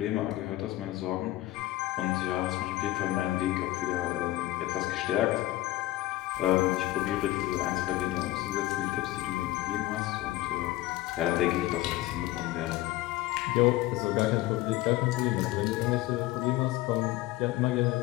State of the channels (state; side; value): quieter; right; 16.9 dB